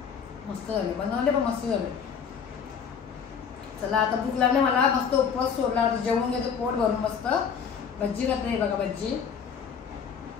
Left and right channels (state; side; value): quieter; right; 6.9 dB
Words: मस्त झाले बनवले पण मस्त झाले. चला आता भूक लागली मला, मस्त उपवास सोडला, आता जेवून घेतो पोट भरून मस्त. भज्जी घातली बघा, भज्जी